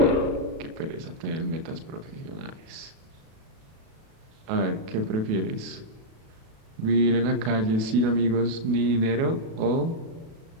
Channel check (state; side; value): late; left; 36 ms